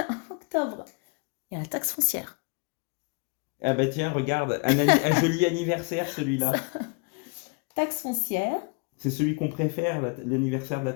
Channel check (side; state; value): right; quieter; 33.4 dB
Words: Octobre. Il y a la taxe foncière. Ah bah tiens, regarde, un joli anniversaire celui-là. Taxe foncière. C'est celui qu'on préfère, l'anniversaire de la